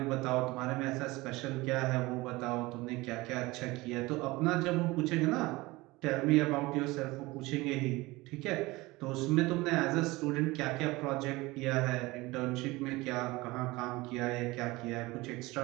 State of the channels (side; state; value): left; quieter; 21.3 dB